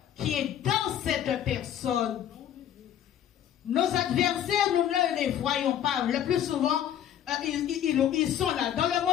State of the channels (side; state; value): right; quieter; 10.4 dB